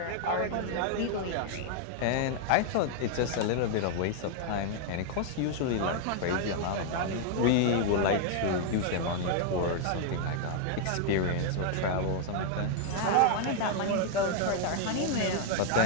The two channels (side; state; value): both; different; correlation 0.00